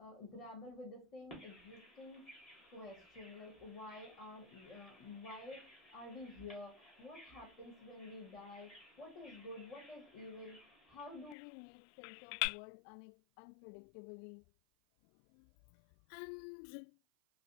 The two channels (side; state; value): right; drops out; at 11.4 s